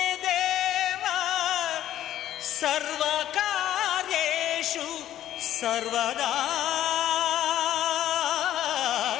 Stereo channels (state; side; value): quieter; right; 12.3 dB